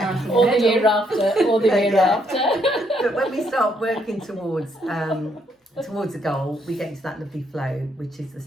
Or the year after, or the year after. But when we start working towards a goal, we get into that lovely flow, which is the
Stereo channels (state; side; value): normal; both; correlation 0.72